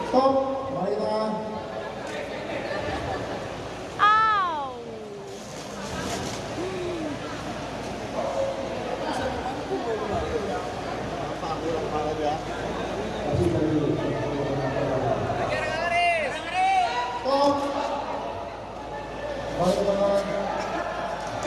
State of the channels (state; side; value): identical; both; correlation 1.00